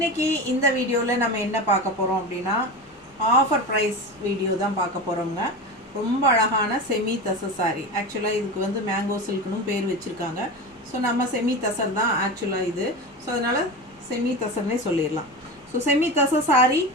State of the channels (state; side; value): normal; both; correlation 0.25